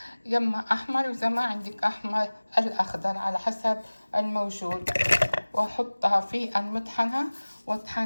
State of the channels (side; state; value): both; inverted; correlation -1.00